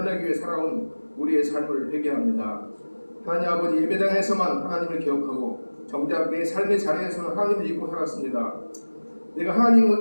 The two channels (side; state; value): both; inverted; correlation -1.00